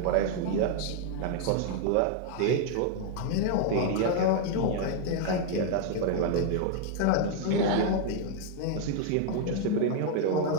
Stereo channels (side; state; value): both; different; correlation 0.00